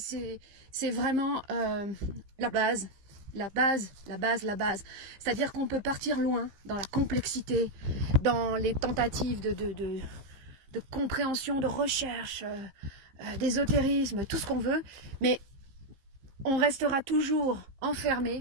vraiment la base. La base. C'est-à-dire qu'on peut partir loin dans la complexité, dans les tentatives de compréhension, de recherche, d'ésotérisme, tout ce qu'on veut, mais on restera toujours enfermé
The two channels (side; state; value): left; late; 15 ms